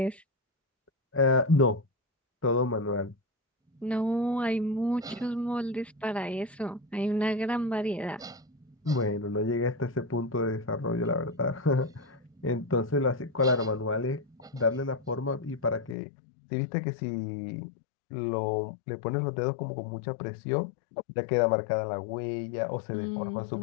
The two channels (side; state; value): right; drops out; at 16.0 s